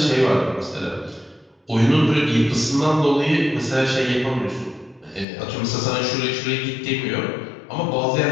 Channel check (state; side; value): drops out; right; at 5.2 s